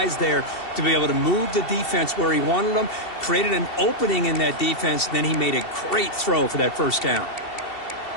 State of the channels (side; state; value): right; late; 2.7 ms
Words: there to be able to move the defense where he wanted them, created an opening in that defense, and then he made a great throw for that first down.